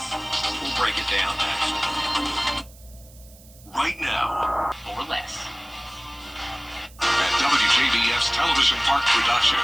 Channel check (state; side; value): noise; right; hiss, 24 dB below the sound